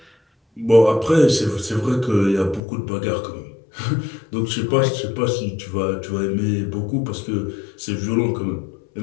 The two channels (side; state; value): right; drops out; at 2.6 s